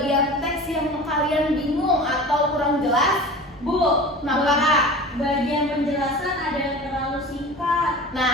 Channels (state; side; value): normal; both; correlation 0.36